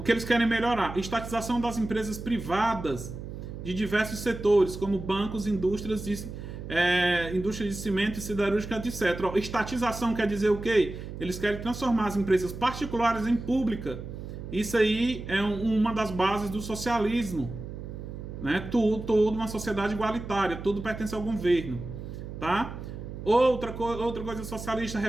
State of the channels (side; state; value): right; noise; hum, 9 dB below the sound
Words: que eles querem melhorar? Estatização das empresas privadas de diversos setores, como bancos, indústria de cimento e siderúrgica, etc. Ó, estatização quer dizer o quê? Eles querem transformar as empresas particulares em pública. Isso aí é uma das bases do socialismo. Né? Tudo uma sociedade igualitária, tudo pertence ao governo, tá? Outra coisa socialista,